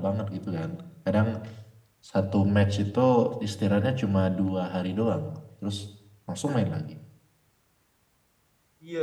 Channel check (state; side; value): identical; both; correlation 1.00